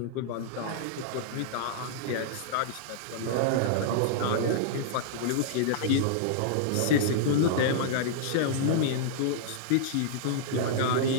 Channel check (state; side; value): different; both; correlation -0.02